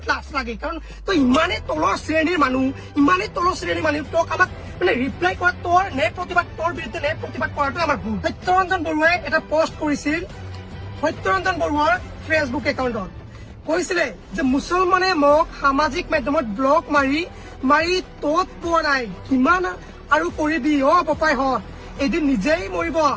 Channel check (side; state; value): both; identical; correlation 1.00